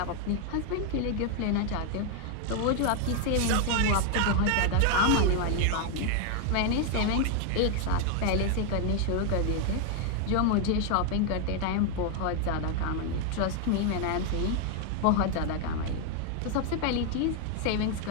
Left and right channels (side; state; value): both; different; correlation 0.00